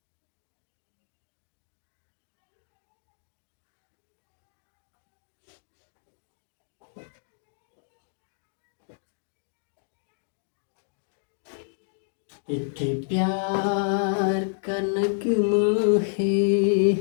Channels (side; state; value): right; silent; digital silence